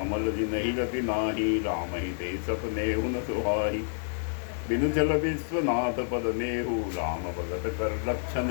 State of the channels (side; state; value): right; silent; digital silence